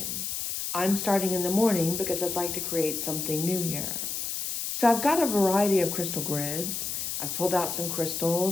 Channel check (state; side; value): noise; left; hiss, 3 dB below the sound